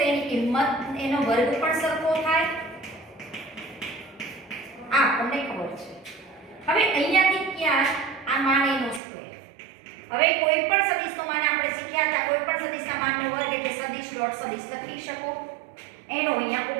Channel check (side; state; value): left; drops out; at 9.0 s